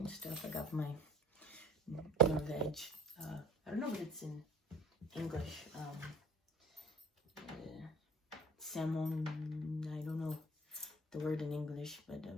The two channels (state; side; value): normal; both; correlation 0.47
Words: stuff. I got my veg. I don't know what it's in English. Salmon, I don't know the word in English, but